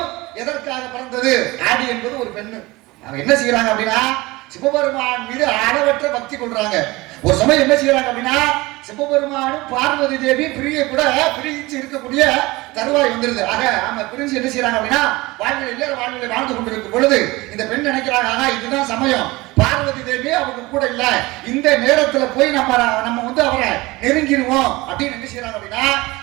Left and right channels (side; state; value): left; quieter; 21.5 dB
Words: எதற்காக பிறந்தது? ஆடி என்பது ஒரு பெண்ணு. அவங்க என்ன செய்யறாங்க அப்படின்னா, சிவபெருமான் மீது அளவற்ற பக்தி கொள்றாங்க. ஒரு சமயம் என்ன செய்யறாங்க அப்படின்னா, சிவபெருமானும் பார்வதி தேவி பிரிஞ்சு இருக்கக்கூடிய தருவாய் வந்துருது. ஆக ஆமா பிரிஞ்சு என்ன செய்யறாங்க அப்படின்னா, வாழ்நிலை வாழ்ந்து கொண்டிருக்கும் பொழுது இந்த பெண் நினைக்கிறாங்க, இதுதான் சமயம், பார்வதி தேவி அவங்க கூட இல்ல, இந்த நேரத்துல போய் நம்ம அவரை நெருங்கிடுவோம் அப்படின்னு என்ன செய்யறாங்க அப்படின்னா,